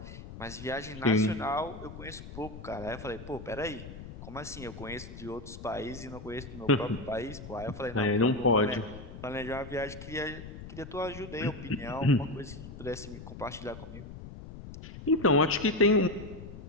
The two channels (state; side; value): noise; left; rumble, 13 dB below the sound